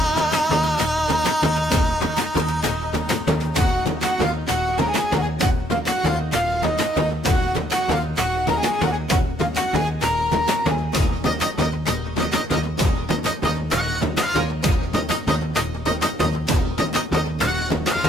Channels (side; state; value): both; normal; correlation 0.70